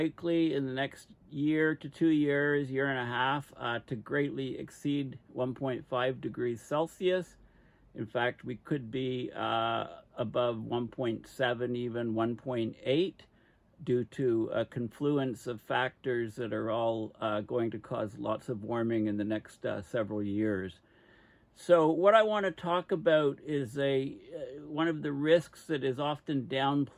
in the next year to 2 years, year and a half, to greatly exceed 1.5 degrees Celsius. In fact, we could be above 1.7, even 1.8. due to a confluence of factors that are all going to cause lots of warming in the next several years. So what I want to talk about is one of the risks that is often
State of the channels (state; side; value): identical; both; correlation 1.00